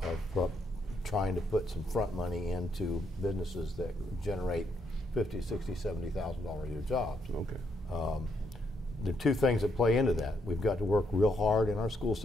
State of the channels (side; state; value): both; normal; correlation 0.76